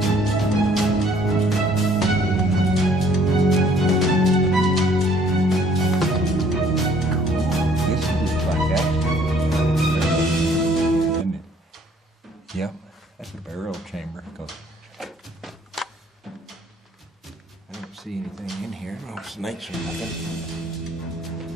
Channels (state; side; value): normal; both; correlation 0.60